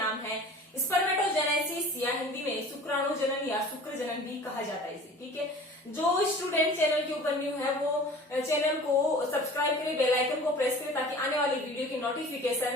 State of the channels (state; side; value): normal; both; correlation 0.43